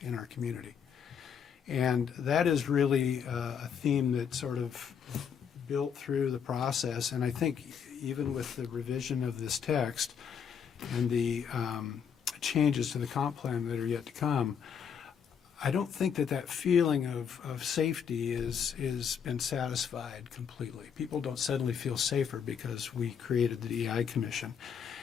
in our community. And that is really a theme that sort of built through the process. And I think even with the revision of this text and the changes to the comp plan that are yet to come, I don't think that feeling of safety is been satisfied completely. People don't suddenly feel safer because we created the DEI Commission.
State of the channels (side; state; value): right; quieter; 7.4 dB